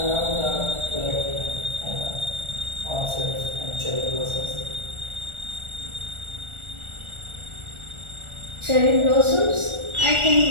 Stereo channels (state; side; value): late; left; 1.4 ms